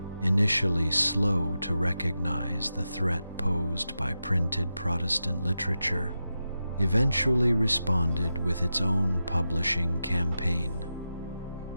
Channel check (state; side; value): inverted; both; correlation -0.90